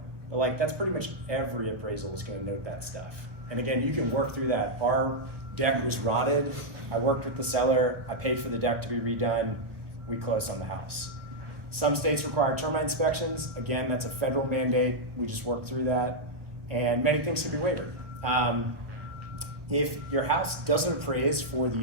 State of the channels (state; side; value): late; left; 1.2 ms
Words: But like that's pretty much every appraisal is going to note that stuff. And again, you can work through that. Our deck was rotted. I worked with the seller. I paid for the deck to be redone. We closed on the house. Some states require termite inspections. Again, that's a federal mandate. We just worked through that. And many things can be waived. If your house doesn't appraise for